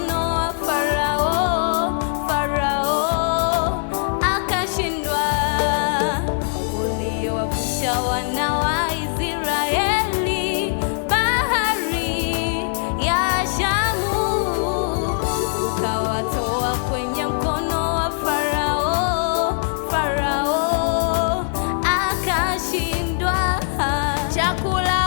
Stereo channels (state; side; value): silent; right; digital silence